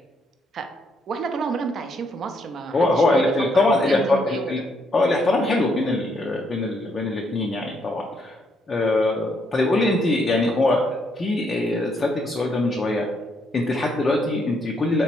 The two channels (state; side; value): normal; both; correlation 0.74